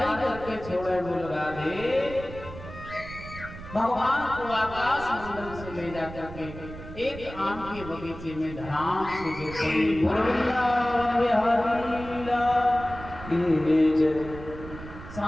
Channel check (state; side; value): noise; right; rumble, 13 dB below the sound